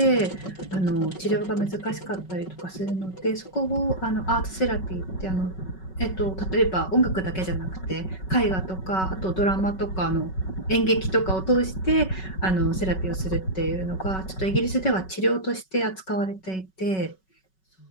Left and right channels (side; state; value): right; late; 5.3 ms